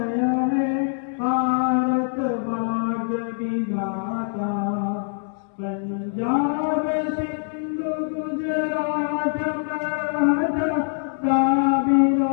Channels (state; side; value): silent; right; 63 dB below the other